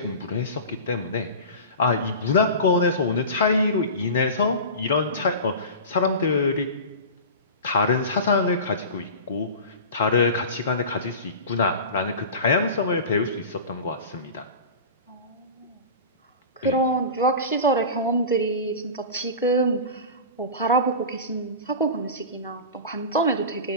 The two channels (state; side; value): inverted; both; correlation -0.32